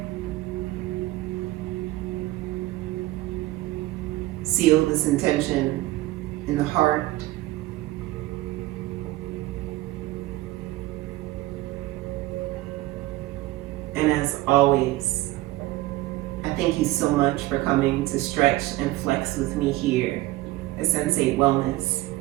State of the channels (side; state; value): left; quieter; 17.8 dB